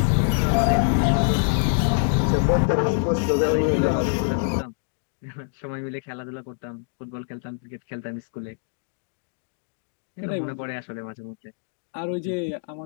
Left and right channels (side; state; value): right; silent; digital silence